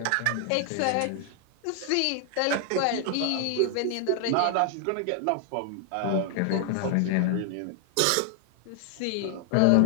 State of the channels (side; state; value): both; different; correlation 0.00